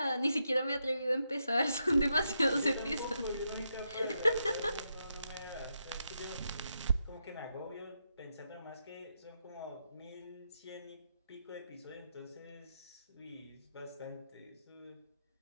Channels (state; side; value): inverted; both; correlation -0.83